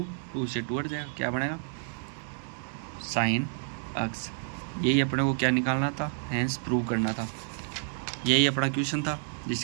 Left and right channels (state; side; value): silent; left; digital silence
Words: से 2 हट जाएगा, क्या बनेगा, sin x। यही अपने को क्या निकालना था, हैंस प्रूव करना था। यही अपना क्वेश्चन था